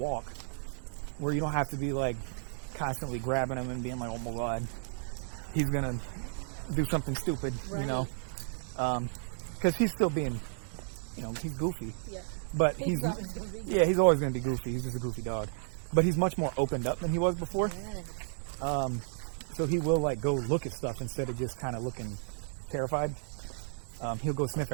where you don't have to be like constantly grabbing him and being like, oh my God, he's gonna do something stupid, you know? Because he's still being, he's goofy. Yeah. But he's always gonna be goofy. He's just a goofy dog. But he's much more opened up than he was before. Yeah. So he will like go look at stuff instead of just kind of looking terrified. He'll go sniff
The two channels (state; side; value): silent; left; digital silence